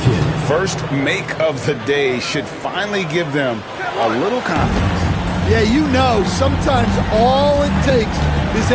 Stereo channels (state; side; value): identical; both; correlation 1.00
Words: First make of the day should finally give them a little confidence. Yeah, you know, sometimes all it takes is